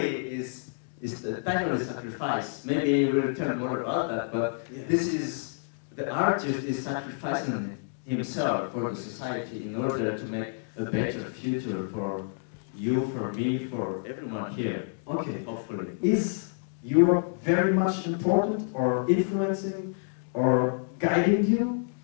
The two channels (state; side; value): silent; right; digital silence